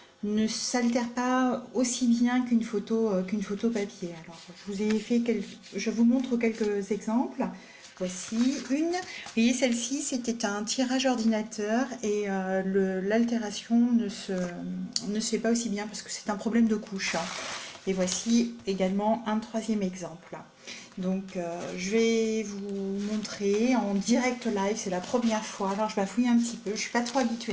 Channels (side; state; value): both; identical; correlation 1.00